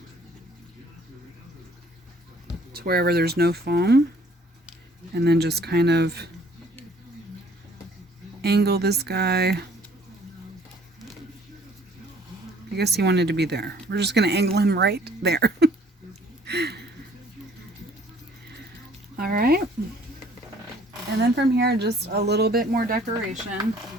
to wherever there's no foam, and then just kind of angle this guy. I guess he wanted to be there. We're just going to angle him right there. All right. And then from here, just a little bit more decoration.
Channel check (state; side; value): normal; both; correlation 0.58